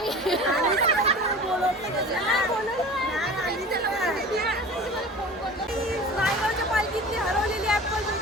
नायगावच्या पालखीतली हरवलेली ऍपल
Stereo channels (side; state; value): both; normal; correlation 0.38